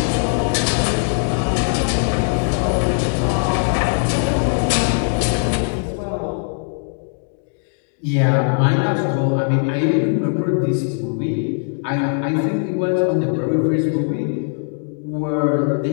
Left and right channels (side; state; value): right; silent; 66 dB below the other